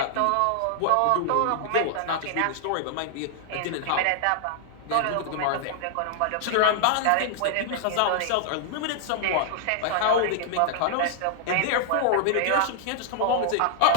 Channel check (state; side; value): different; both; correlation -0.01